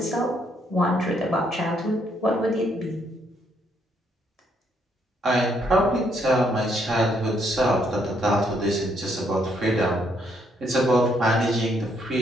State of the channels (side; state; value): both; normal; correlation 0.72